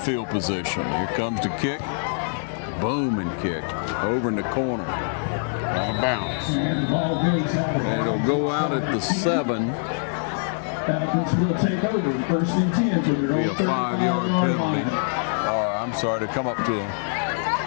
position. Here comes the kick. Boom, and kick over in the corner. Out of bounds. And it'll go out at the 7. Falcons will take over, first and 10 for their Be a 5-yard penalty. Or I'm sorry, to come up to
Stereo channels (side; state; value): right; silent; digital silence